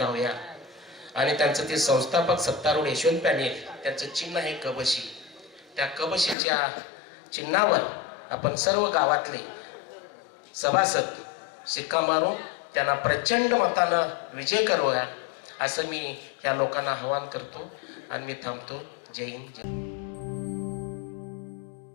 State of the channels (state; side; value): drops out; right; at 6.4 s